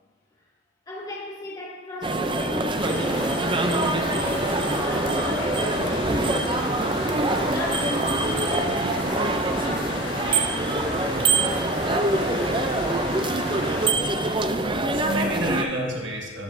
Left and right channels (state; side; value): normal; both; correlation 0.37